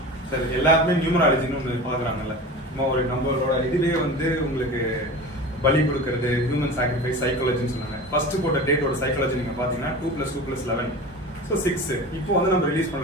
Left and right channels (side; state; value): both; normal; correlation 0.33